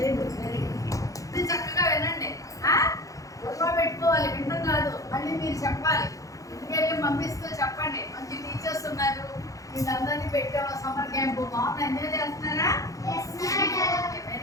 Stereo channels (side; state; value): right; late; 0.16 ms